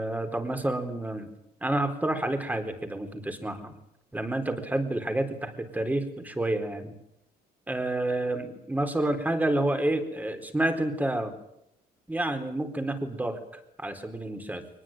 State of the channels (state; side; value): normal; both; correlation 0.87